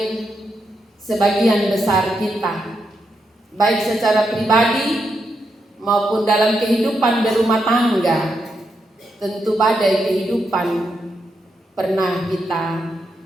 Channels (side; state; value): both; normal; correlation 0.83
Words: sebagian besar kita, baik secara pribadi maupun dalam kehidupan berumah tangga, tentu badai kehidupan pernah kita